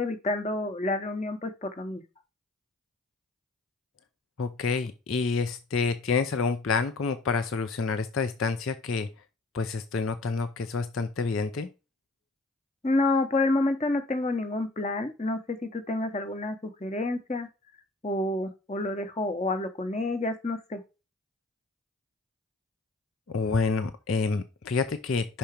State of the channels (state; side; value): quieter; right; 3.1 dB